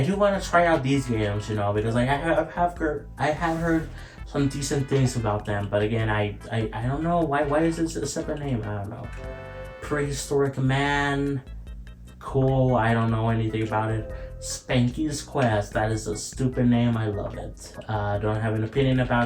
do want to try out these games, you know, because like I have heard some decent things about them, but again, I don't know why is this a separate name? I don't know. Prehistoric Man, cool. I don't know anything about it. Spanky's Quest, that is a stupid name. I love it. Don't have an opinion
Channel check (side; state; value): both; identical; correlation 1.00